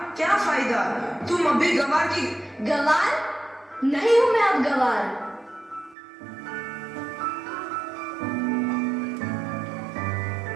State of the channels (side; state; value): left; drops out; at 6.0 s